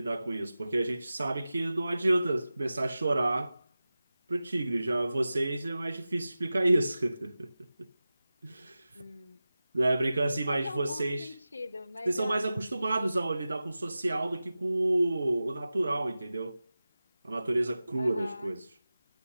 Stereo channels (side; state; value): both; inverted; correlation -0.95